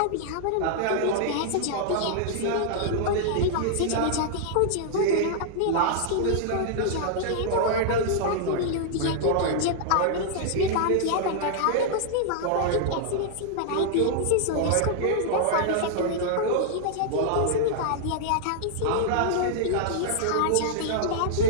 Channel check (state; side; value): different; both; correlation -0.01